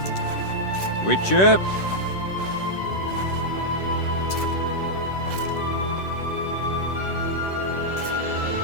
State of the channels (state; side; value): late; right; 10 ms